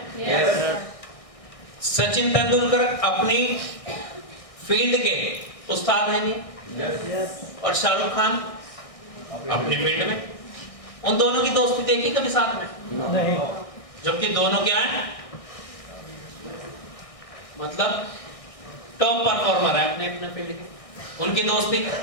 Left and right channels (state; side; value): late; right; 1.6 ms